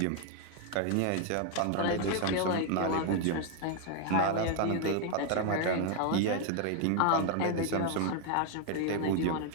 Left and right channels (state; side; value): different; both; correlation 0.00